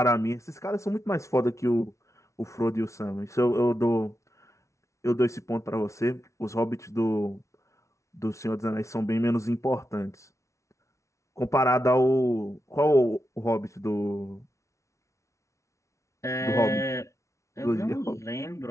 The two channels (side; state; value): right; late; 0.14 ms